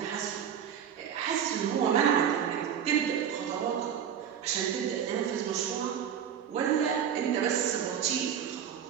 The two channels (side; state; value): left; quieter; 8.6 dB